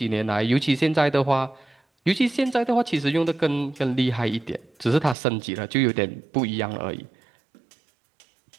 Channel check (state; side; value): drops out; left; at 5.2 s